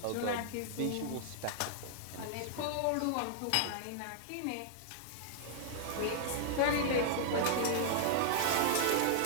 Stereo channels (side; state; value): both; different; correlation -0.01